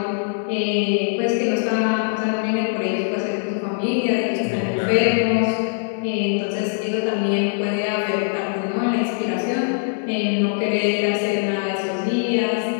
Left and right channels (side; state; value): right; silent; 60 dB below the other